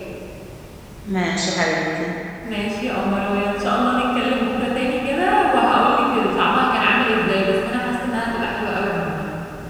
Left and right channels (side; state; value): both; identical; correlation 1.00